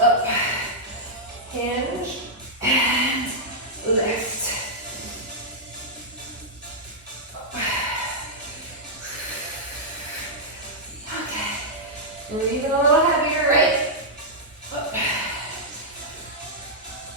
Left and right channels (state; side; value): normal; both; correlation -0.08